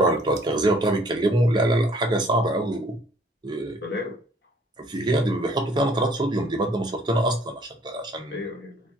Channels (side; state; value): both; normal; correlation 0.59